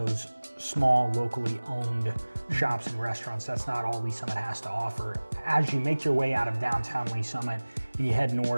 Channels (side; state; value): both; inverted; correlation -1.00